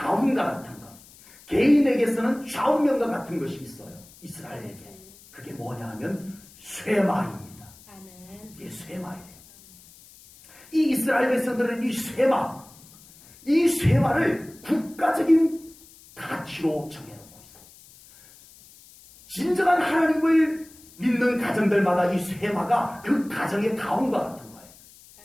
같은 것, 개인에게서는 좌우명과 같은 것이 있어요. 이스라엘에게. 그게 뭐냐 하면 쇠마입니다. 아멘. 이게 쇠마예요. 이 이스라엘 백성들은 이 쇠마를 국가적인 가치로 정해놓고 있어요. 진정한 하나님을 믿는 가정들마다 이 쇠마가 그 가정의 가훈과 같은 거예요.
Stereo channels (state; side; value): noise; left; hiss, 23 dB below the sound